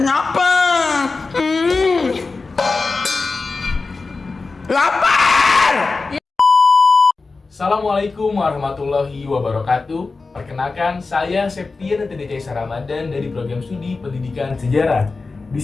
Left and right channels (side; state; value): right; quieter; 4.0 dB